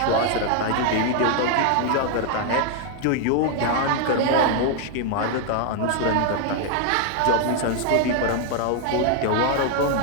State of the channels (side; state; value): both; different; correlation 0.00